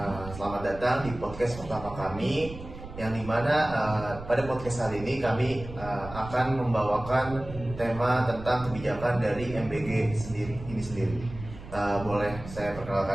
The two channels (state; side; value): noise; right; rumble, 13 dB below the sound